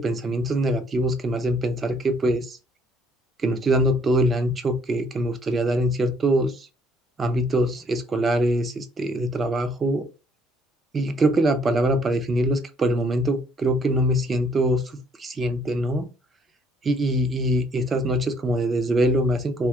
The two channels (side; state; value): both; normal; correlation 0.64